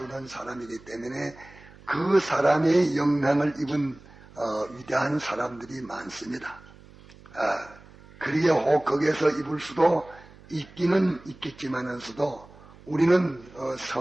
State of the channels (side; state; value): right; noise; hum, 22 dB below the sound